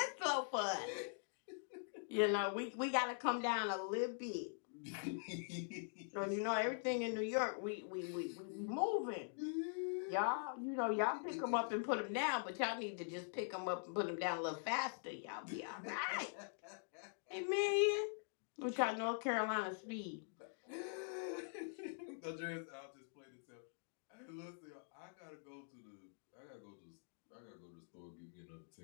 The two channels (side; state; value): right; silent; digital silence